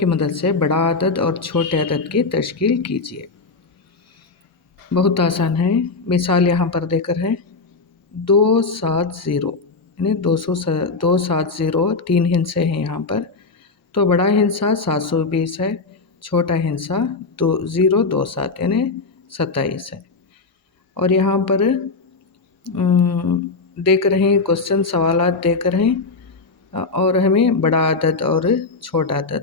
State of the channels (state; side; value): quieter; right; 4.1 dB